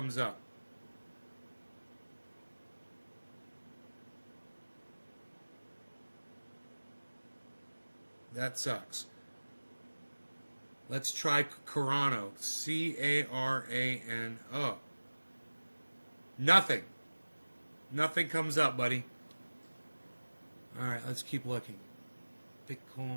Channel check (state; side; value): inverted; both; correlation -1.00